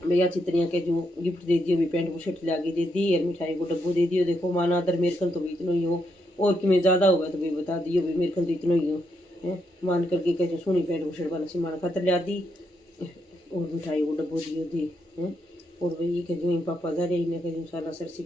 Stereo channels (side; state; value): both; normal; correlation 0.80